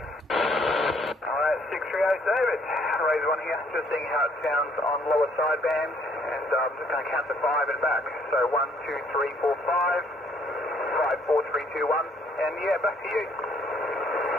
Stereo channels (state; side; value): normal; both; correlation 0.64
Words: Alright, 638 David. Raise 1 here. Just seeing how it sounds on lower sideband, and I'm just going to count to 5 and back. So 1, 2, 3, 4, 5, 5, 4, 3, 2, 1, and yeah, back to you.